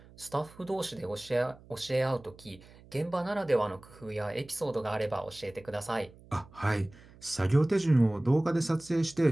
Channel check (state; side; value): noise; right; hum, 23 dB below the sound